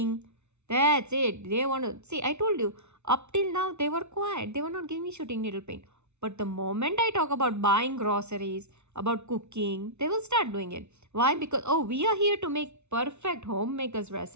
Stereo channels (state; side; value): late; left; 0.82 ms